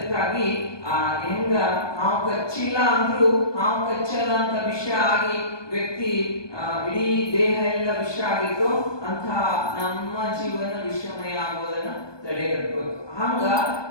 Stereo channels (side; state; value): right; late; 1.2 ms